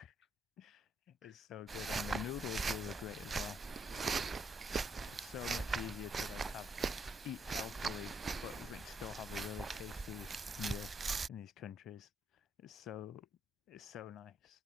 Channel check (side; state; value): both; normal; correlation 0.75